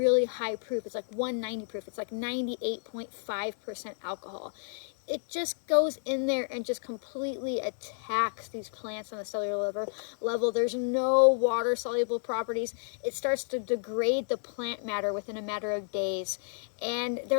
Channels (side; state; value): right; silent; digital silence